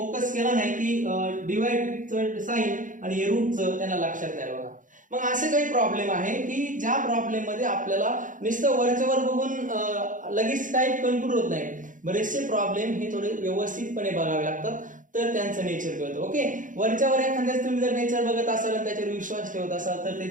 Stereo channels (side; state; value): left; late; 0.38 ms